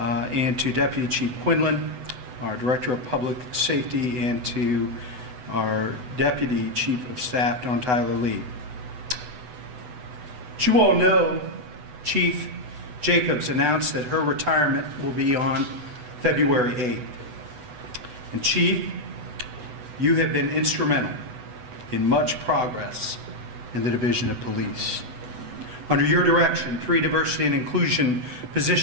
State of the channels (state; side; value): late; left; 8.0 ms